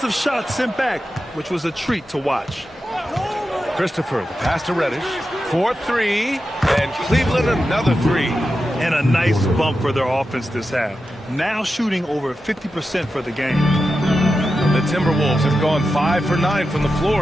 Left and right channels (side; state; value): both; normal; correlation 0.90